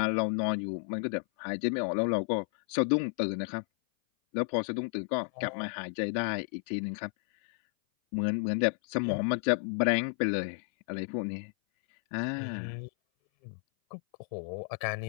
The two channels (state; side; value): silent; right; 57 dB below the other